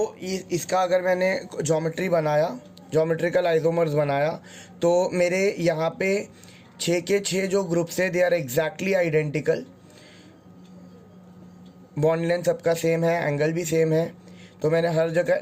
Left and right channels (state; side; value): identical; both; correlation 1.00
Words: इसका अगर मैंने ज्योमेट्री बनाया, ज्योमेट्रिकल आइसोमर्स बनाया, तो मेरे यहाँ पे 6 के 6 जो ग्रुप्स है they are exactly identical. Bond length सबका सेम है, एंगल भी सेम है, तो मैंने हर